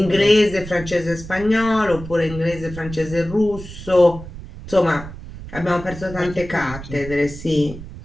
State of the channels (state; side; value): noise; right; rumble, 13 dB below the sound